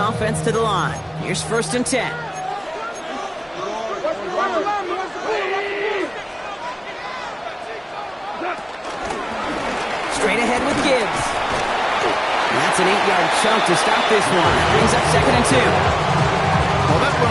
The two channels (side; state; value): both; identical; correlation 1.00